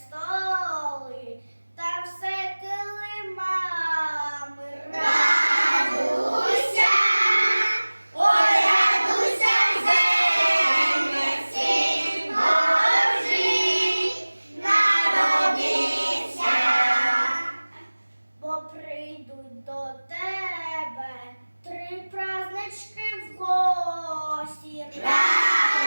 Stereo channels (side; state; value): both; inverted; correlation -1.00